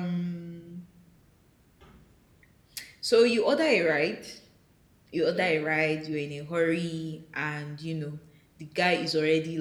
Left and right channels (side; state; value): both; identical; correlation 1.00